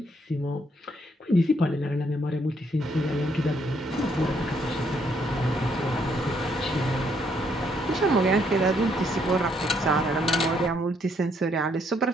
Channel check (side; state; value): both; normal; correlation 0.71